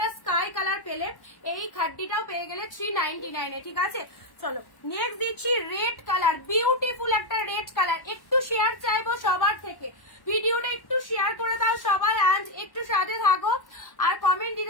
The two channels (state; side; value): late; right; 1.1 ms